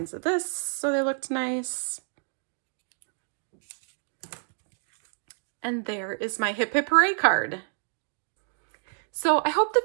of this so they looked nice. And there is my Hip Hip Hooray card. So I hope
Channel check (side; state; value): left; silent; 59 dB below the other